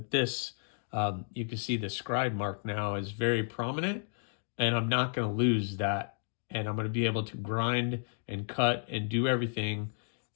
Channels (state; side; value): silent; right; 56 dB below the other